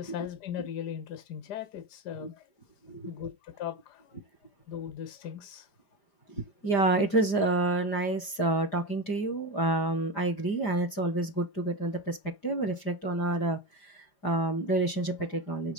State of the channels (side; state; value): right; late; 5.0 ms